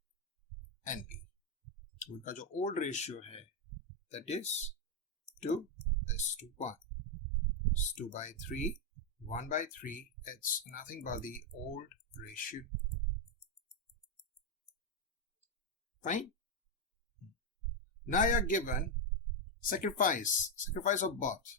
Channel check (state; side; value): normal; both; correlation 0.04